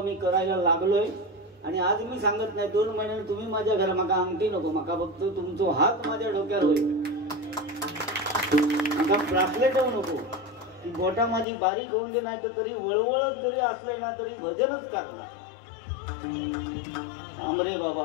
मी करायला लागलोय. आणि आज मी सांगत नाही 2 महिन्याने तुम्ही माझ्या घरा माका अंगठी नको, माका फक्त तुमचा हात माझ्या डोक्यावर होईल, माका ब्रासलेट होऊ नको, ती बोटा माझी बारीक होऊन दे, नाही तर तरी वळवळत जरी असले ना तरी भजनच करणार. आमरे बाबा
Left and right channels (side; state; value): right; drops out; at 11.5 s